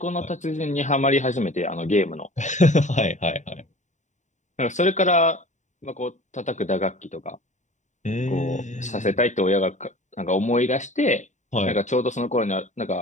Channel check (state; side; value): late; right; 0.35 ms